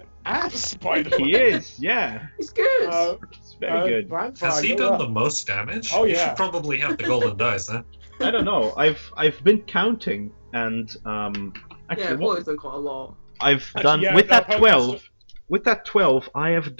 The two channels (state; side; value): inverted; both; correlation -1.00